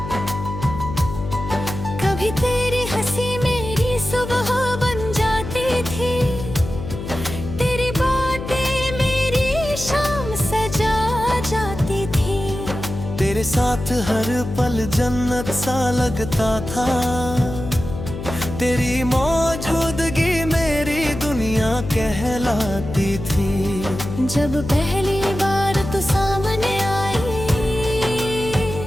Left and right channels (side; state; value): left; noise; hum, 8 dB below the sound